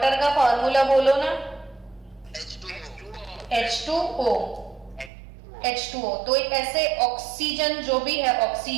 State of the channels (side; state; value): left; drops out; at 5.1 s